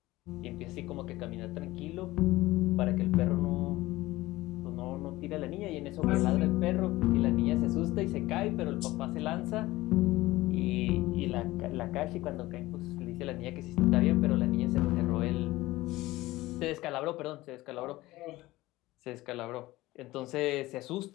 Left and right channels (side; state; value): right; quieter; 18.3 dB